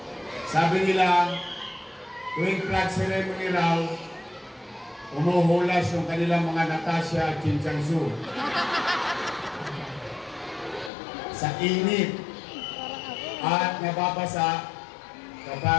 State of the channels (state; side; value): drops out; right; at 10.9 s